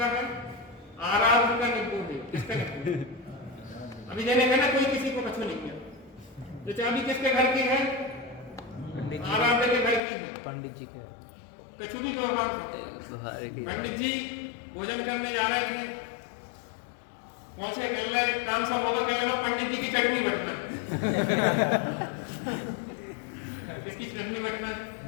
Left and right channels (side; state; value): right; drops out; at 10.0 s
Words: है? आराध्य का नींबू है। किसका नींबू? अभी जैसे कहना कोई किसी को कछु नहीं है। तो चाबी किसके घर की है? आराध्य के घर की है। पंडित जी के कछु भी व्यवहार। पंडित जी भोजन करने जा रहे थे, पहुंचे, कल काम सब होगा, कल लगा पंडित जी की चटनी बटना। किसकी चटनी बटना?